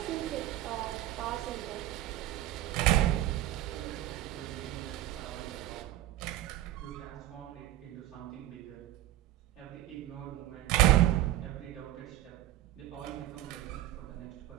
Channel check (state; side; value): quieter; left; 14.0 dB